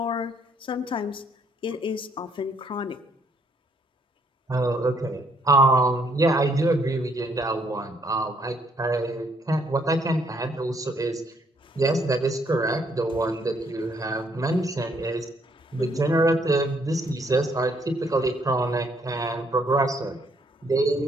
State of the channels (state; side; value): normal; both; correlation 0.69